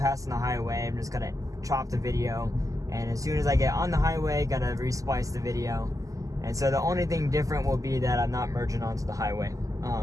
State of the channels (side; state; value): left; late; 0.16 ms